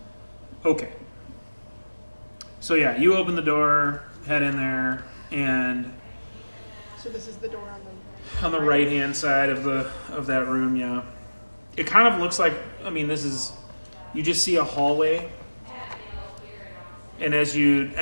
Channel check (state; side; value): inverted; both; correlation -1.00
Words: Okay. So yeah, you open the door, head in there, and So this is the door on the on the right hand side of that room, yeah. It kind of looks like, I mean, this is, you just see a hallway, and as you